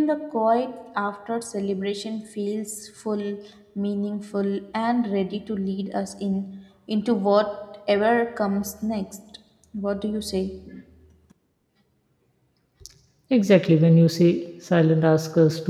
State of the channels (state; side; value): identical; both; correlation 1.00